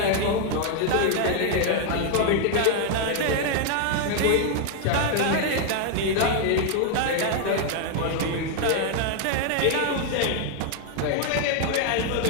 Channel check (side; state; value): both; different; correlation 0.00